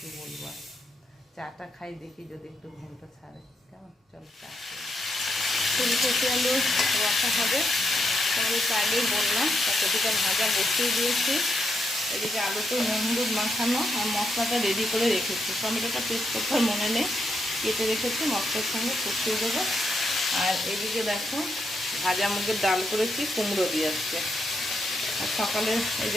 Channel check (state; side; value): normal; both; correlation 0.80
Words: বলবো। চাটা খাই, দেখি যদি একটু ঘুমটা ছাড়ে। কেমন, চলো চা। ফুলকপি আলু রসা হবে, তোমাদের তো আগেই বললাম। কপিটা ভাজা বসিয়ে দিয়েছি। এদিকে আলুতে নুন হলুদ মাখানো আর মশলাটা রেডি করে রেখেছি। টমেটোটা পেস্ট করতে মনে নেই, কেটে রেখেছি, মশলার সঙ্গে কষিয়ে দেবো। আর এদিকে দেখো, ভাজা মুগের ডাল করেছি, কুমড়ো দিয়ে আসছে। আর সকালে এই